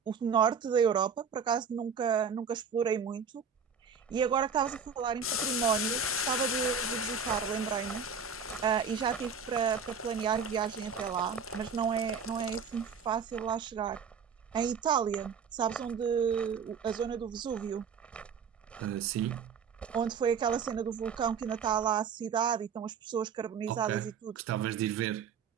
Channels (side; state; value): left; quieter; 6.0 dB